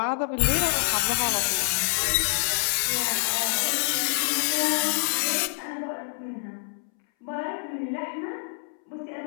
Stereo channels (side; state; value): right; silent; 61 dB below the other